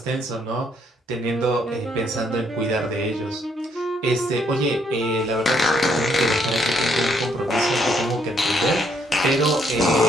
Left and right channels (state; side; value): normal; both; correlation 0.71